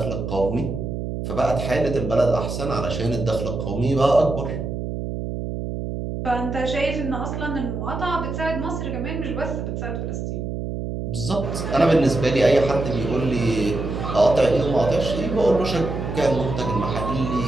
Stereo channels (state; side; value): noise; right; hum, 4 dB below the sound